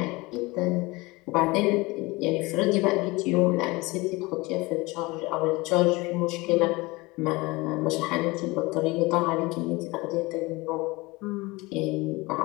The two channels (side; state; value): right; quieter; 23.1 dB